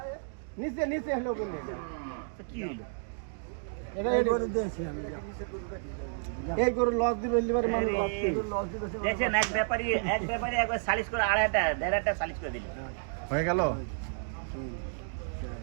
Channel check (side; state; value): left; silent; digital silence